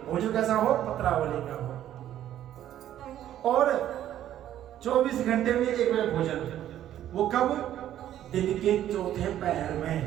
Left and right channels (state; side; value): quieter; left; 11.8 dB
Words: भोजन कैसा हो? पत्रावली का हो, और 24 घंटे में एक बार भोजन। वो कब? दिन के चौथे पहर में।